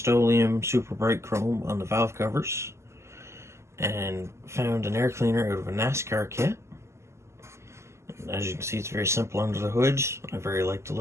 super bright chrome on the valve covers, and found an air cleaner out of a NASCAR kit. And as you can see, it's very simple under the hood. I very like the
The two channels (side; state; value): left; late; 0.13 ms